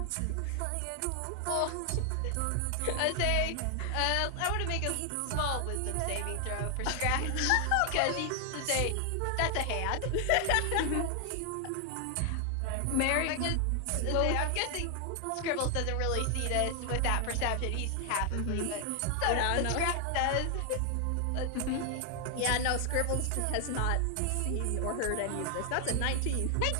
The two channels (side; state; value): both; different; correlation 0.00